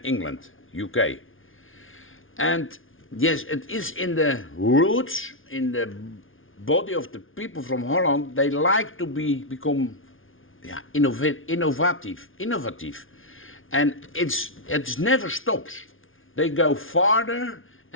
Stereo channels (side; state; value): right; late; 0.58 ms